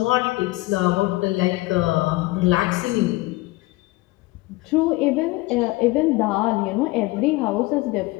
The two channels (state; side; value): quieter; right; 21.1 dB